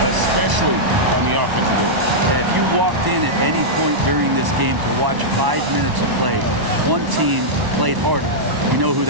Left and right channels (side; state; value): left; late; 1.0 ms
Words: especially on the offensive end. If you walked in at any point during this game to watch 5 minutes of play, one team played harder. We know who